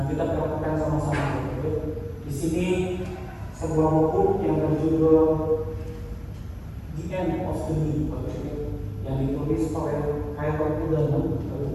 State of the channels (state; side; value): identical; both; correlation 1.00